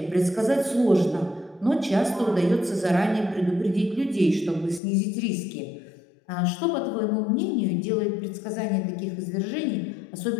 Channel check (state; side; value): drops out; right; at 4.8 s